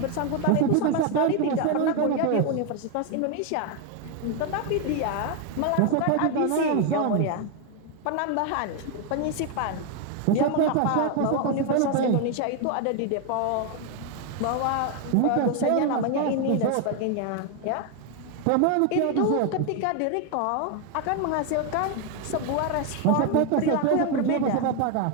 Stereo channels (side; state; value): both; different; correlation 0.01